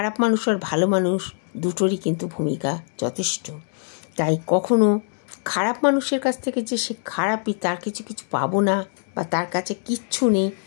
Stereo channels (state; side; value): silent; right; 59 dB below the other